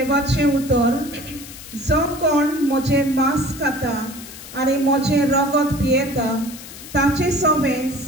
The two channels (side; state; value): left; noise; hiss, 15 dB below the sound